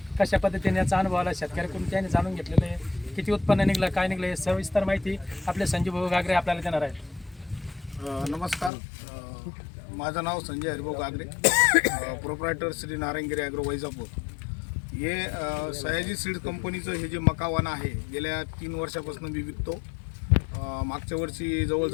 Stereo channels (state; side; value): drops out; right; at 8.7 s